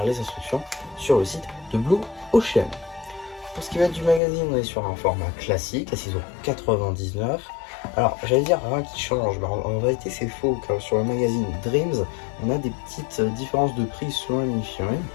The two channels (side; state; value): right; drops out; at 4.2 s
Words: les instructions sur le site de Blue Ocean. Pour ce qui va être du magazine, on est sur un format classique à 6,99 €. Alors, j'allais dire rien qui change, mais en réalité c'est faux, car sur le magazine Dreams, on a des petites différences de prix selon la mini-figurine.